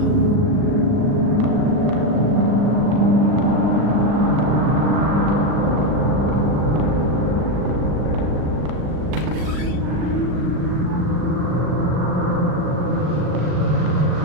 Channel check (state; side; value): late; left; 39 ms